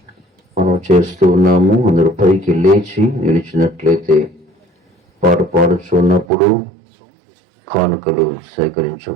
మనం చేస్తూ ఉన్నాము. అందరూ పైకి లేచి నిలిచినట్లయితే పాట పాడుచున్నప్పుడు కానుకలు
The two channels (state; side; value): drops out; left; at 6.2 s